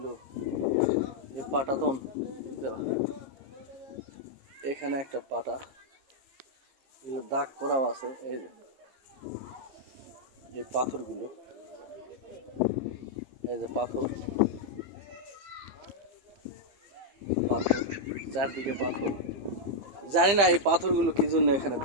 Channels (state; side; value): late; left; 15 ms